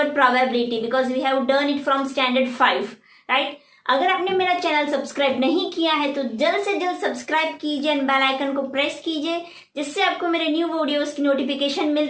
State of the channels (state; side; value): identical; both; correlation 1.00